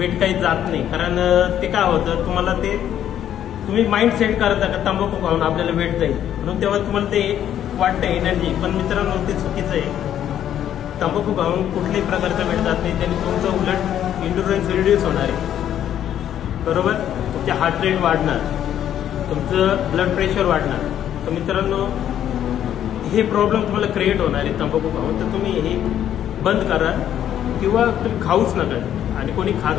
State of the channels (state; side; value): quieter; right; 10.6 dB